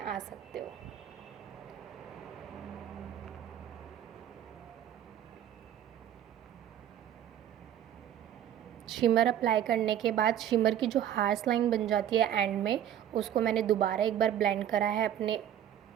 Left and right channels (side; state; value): left; quieter; 10.7 dB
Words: सकते हो। शिमर अप्लाई करने के बाद शिमर की जो हार्श लाइन बन जाती है एंड में, उसको मैंने दोबारा एक बार ब्लेंड करा है अपने